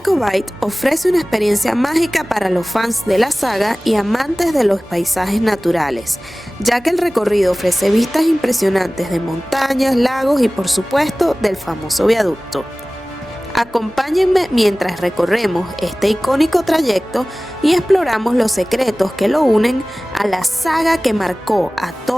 ofrece una experiencia mágica para los fans de la saga y amantes de los paisajes naturales, ya que el recorrido ofrece vistas impresionantes de montañas, lagos y por supuesto del famoso viaducto. Acompáñenme mientras recorremos este icónico trayecto y exploramos los secretos que lo unen a la saga que marcó a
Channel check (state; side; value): normal; both; correlation 0.98